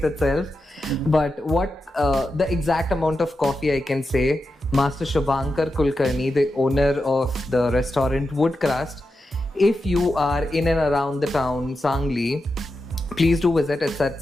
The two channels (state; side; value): normal; both; correlation 0.89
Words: itself. But what the exact amount of coffee I can say, Master Shubhankar Kulkarni, the owner of the restaurant Woodcrust, if you are in and around the town, Sangli, please do visit. It's at